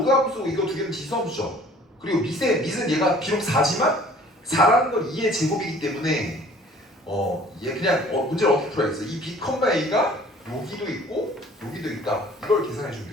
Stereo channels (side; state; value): both; normal; correlation 0.52